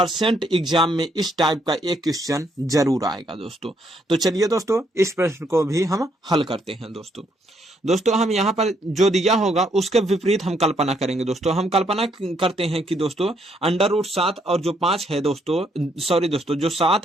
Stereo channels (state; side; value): normal; both; correlation 0.72